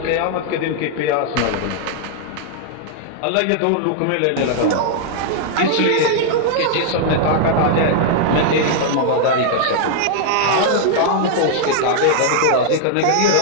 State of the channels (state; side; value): different; both; correlation -0.01